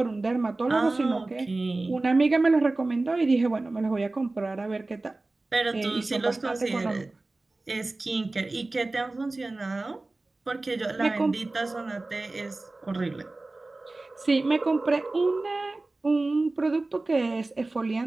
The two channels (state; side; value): quieter; left; 3.1 dB